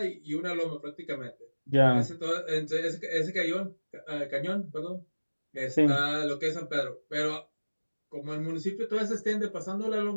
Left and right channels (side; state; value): both; inverted; correlation -1.00